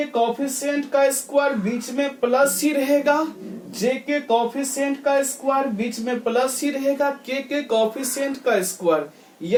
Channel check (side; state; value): both; identical; correlation 1.00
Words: कॉफिशिएंट का स्क्वायर बीच में प्लस ही रहेगा, जे के कॉफिशिएंट का स्क्वायर बीच में प्लस ही रहेगा, के कॉफिशिएंट का स्क्वायर,